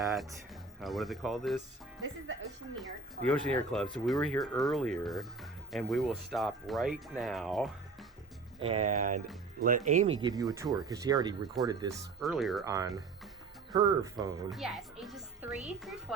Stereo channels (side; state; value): left; quieter; 4.1 dB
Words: what do they call this? This is the Oceaneer Club. The Oceaneer Club. So we were here earlier, and we will stop right now and let Amy give you a tour because she already recorded this earlier on her phone. Yes, ages 3 through